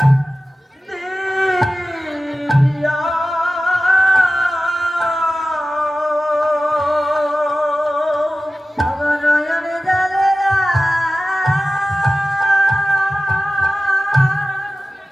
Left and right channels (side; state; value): both; normal; correlation 0.96